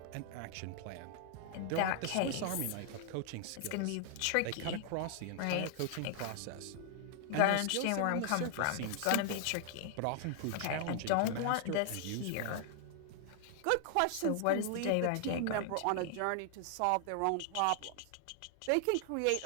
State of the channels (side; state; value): both; different; correlation 0.00